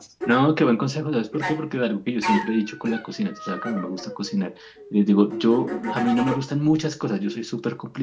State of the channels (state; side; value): identical; both; correlation 1.00